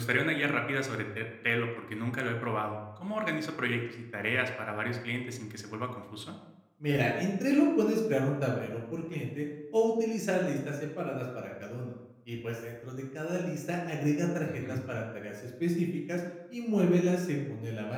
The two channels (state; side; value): identical; both; correlation 1.00